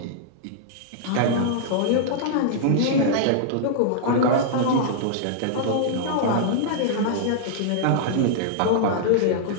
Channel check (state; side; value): different; both; correlation -0.01